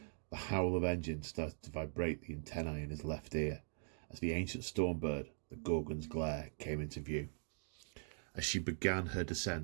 The howl of engines started to vibrate the antennae in his left ear as the ancient stormbird, the Gorgon's glare, came into view. As she began her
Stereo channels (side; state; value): left; silent; digital silence